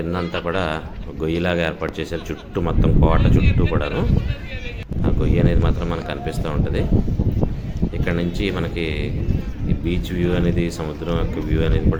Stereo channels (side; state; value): both; identical; correlation 1.00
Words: అంతా కూడా గొయ్యిలాగా ఏర్పాటు చేశారు చుట్టూ, మొత్తం కోట చుట్టూ కూడాను. ఆ గొయ్యి అనేది మాత్రం మనకు కనిపిస్తూ ఉంటుంది. ఇక్కడ నుంచి మనకి ఈ బీచ్ వ్యూ అనేది, సముద్రం యొక్క వ్యూ అనేది